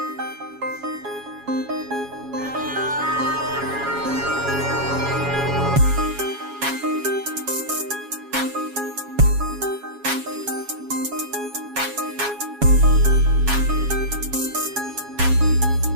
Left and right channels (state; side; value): late; left; 7.2 ms